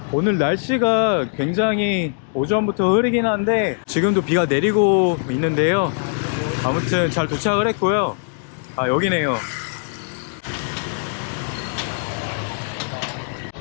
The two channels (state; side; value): silent; right; 65 dB below the other